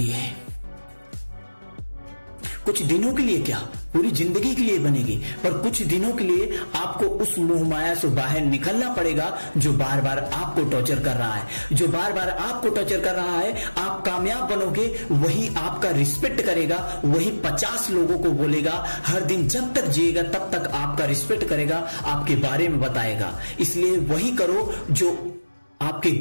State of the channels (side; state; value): both; inverted; correlation -1.00